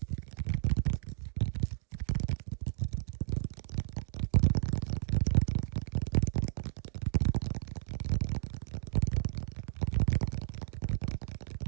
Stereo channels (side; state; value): left; silent; digital silence